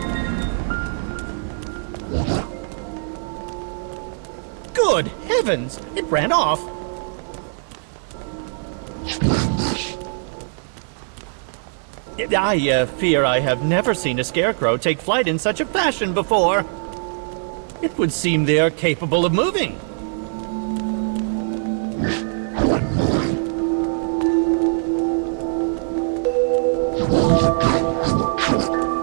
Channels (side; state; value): left; silent; digital silence